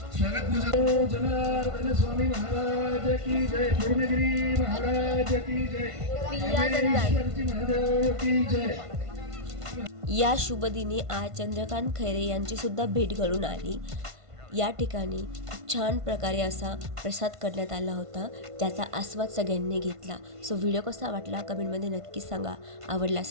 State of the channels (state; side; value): late; left; 1.5 ms